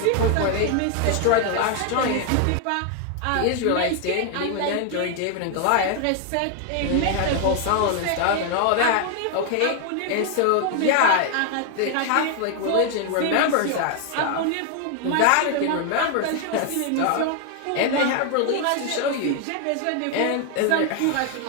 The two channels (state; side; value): different; both; correlation 0.00